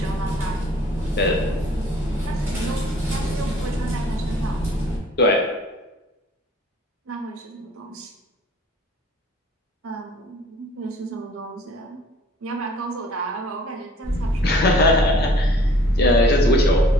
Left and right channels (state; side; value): normal; both; correlation 0.53